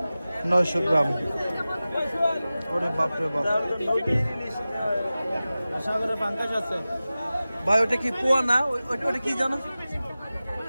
900 গ্রাম। ওরে বাপরে বাপ। ভাই ওটা কি পোয়া না? ওটা কি জানো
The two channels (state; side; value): inverted; both; correlation -0.96